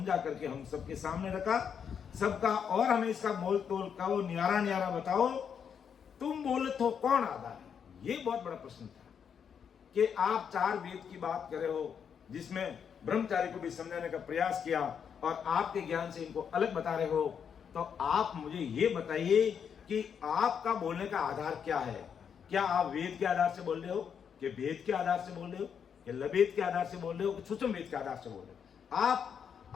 करके हम सबके सामने रखा सबका, और हमें इसका मोल तोल कहो, न्यारा न्यारा बताओ, तुम बोले तो कौन आधार है। ये बहुत बड़ा प्रश्न था कि आप 4 वेद की बात कर रहे हो जिसमें ब्रह्मचारी को भी समझाने का प्रयास किया और आपके ज्ञान से इनको अलग बता रहे हो, तो आप मुझे ये बताइए कि आपका बोलने का आधार क्या है। क्या आप वेद के आधार से बोल रहे हो, कि वेद के आधार से बोल रहे हो, कि लवेद के आधार से बोल रहे हो, कि सूक्ष्म वेद के आधार से बोल रहे हो।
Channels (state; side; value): quieter; right; 7.4 dB